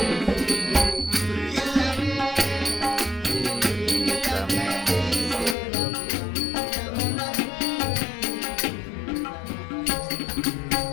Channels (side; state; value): right; drops out; at 5.6 s